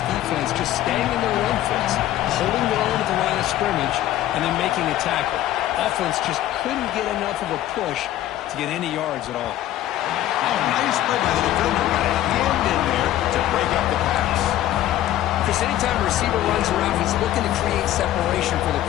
just staying in their run fits, holding their own at the line of scrimmage, and then making a tackle. Offense just couldn't get enough of a push to get any yards at all. Oh, nice play by the defender. Got a hand in there to break up the pass. Chris, anytime a receiver runs around, he's looking to create separation for the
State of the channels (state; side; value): quieter; right; 13.4 dB